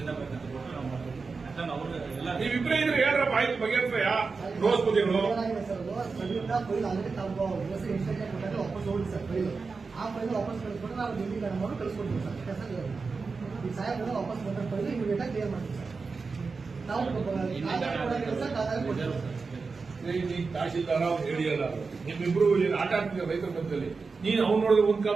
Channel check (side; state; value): left; quieter; 4.5 dB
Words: ಬೇಕಂತ ಕೊಟ್ಟು ನಾವು ಮಾಡ್ತೀವಿ. ಎಲ್ಲ ನೀವಿಬ್ರೇ ಇದ್ರೆ ಹೇಳ್ರಪ್ಪ, ಆಯ್ತು ಬಗೆಹರಿಸ್ರಯ್ಯ. ರೋಸ್ ಬುದ್ಧಿಗಳು ಆ ಫೈಲ್ ವಾಪಸ್ ಕಳಿಸ್ಕೊಂಡು ನಾವು ಡಿಗ್ರಿ ಮಾಡಿ ಕಳಿಸ್ಕೊಡ್ತೀವಿ ಸರ್. ಈ ಸಾಹೇಬ್ರ ವಾಪಸ್ ಬಂದ ಫೈಲ್ ಇಮಿಡಿಯೇಟ್ ಆಗಿ ಕ್ಲಿಯರ್ ಮಾಡ್ತೀವಿ ಸರ್. ನಾವು ತಹಶೀಲ್ದಾರ ಅವ್ರು ಹೇಳಿಯಲ್ಲ, ನಿಮ್ಮಿಬ್ರು ಏನು ಆಟ ಆಡ್ತಿದ್ದೀರ ರೈತರ ಮಧ್ಯದಲ್ಲಿ. ನೀನ್ ಅವ್ನು ನೋಡಿದ್ರೆ ಒಂದ್